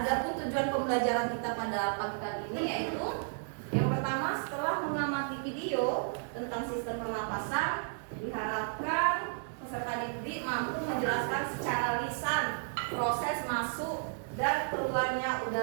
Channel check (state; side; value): silent; left; digital silence